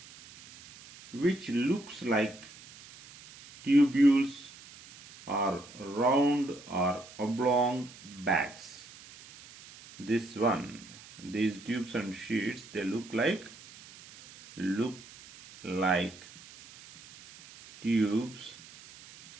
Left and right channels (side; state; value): right; noise; hiss, 20 dB below the sound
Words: which looks like tubules or round or oblong bags. This one, these tubes and sheets, they look like tubes